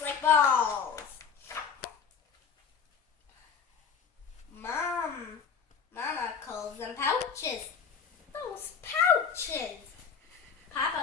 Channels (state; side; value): quieter; right; 6.6 dB